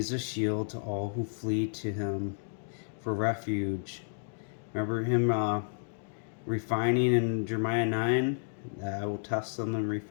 a shield to all who flee to him for refuge. Remember him refining in Jeremiah 9? I will test them and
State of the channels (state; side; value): silent; right; digital silence